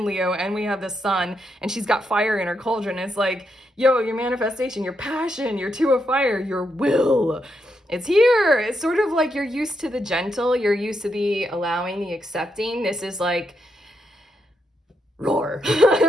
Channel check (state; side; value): normal; both; correlation 0.81